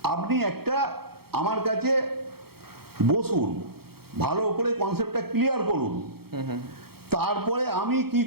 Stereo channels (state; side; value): late; left; 0.95 ms